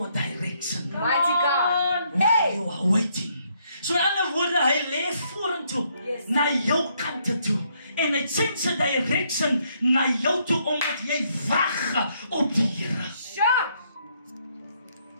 direction. Mighty God. While you are waiting. So in ander woorde, hy lê vorentoe, na jou kante toe. En hy change sy direction na jou toe, omdat jy wag op die Here.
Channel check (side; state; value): both; inverted; correlation -0.72